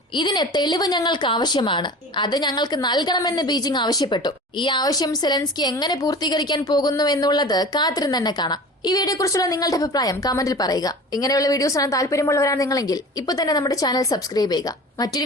ഇതിന് തെളിവ് ഞങ്ങൾക്ക് ആവശ്യമാണ്, അത് ഞങ്ങൾക്ക് നൽകണമെന്ന് ബീജിംഗ് ആവശ്യപ്പെട്ടു. ഈ ആവശ്യം സെലൻസ്കി എങ്ങനെ പൂർത്തീകരിക്കാൻ പോകുന്നു എന്നുള്ളത് കാത്തിരുന്ന് തന്നെ കാണാം. ഈ വീഡിയോ കുറിച്ചുള്ള നിങ്ങളുടെ അഭിപ്രായം കമന്റിൽ പറയുക. ഇങ്ങനെയുള്ള വീഡിയോസ് ആണ് താല്പര്യമുള്ളവരാണ് നിങ്ങളെങ്കിൽ ഇപ്പൊ തന്നെ നമ്മുടെ ചാനൽ സബ്സ്ക്രൈബ് ചെയ്യുക. മറ്റൊരു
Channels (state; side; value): normal; both; correlation 0.38